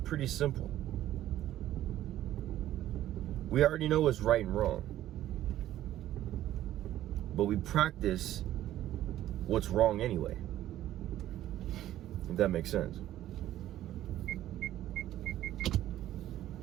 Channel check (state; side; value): quieter; left; 13.2 dB